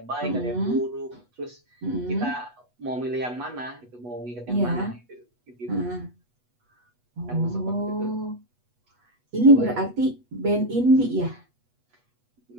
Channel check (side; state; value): left; late; 8.2 ms